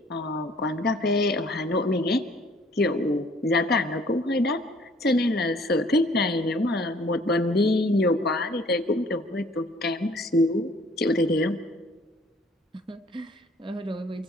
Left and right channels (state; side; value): normal; both; correlation 0.57